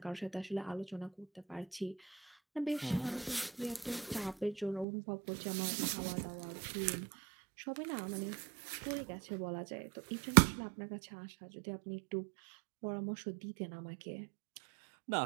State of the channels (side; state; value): left; drops out; at 4.9 s